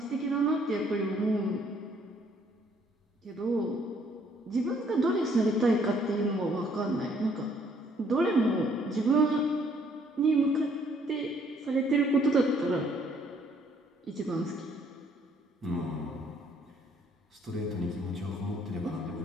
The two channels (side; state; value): both; normal; correlation 0.65